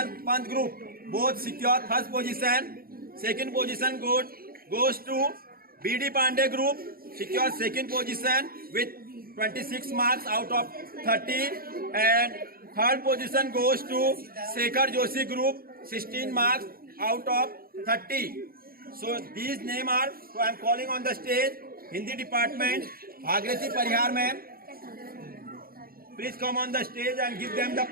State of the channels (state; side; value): late; left; 0.43 ms